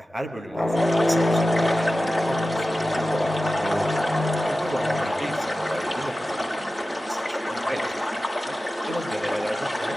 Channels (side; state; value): both; normal; correlation 0.95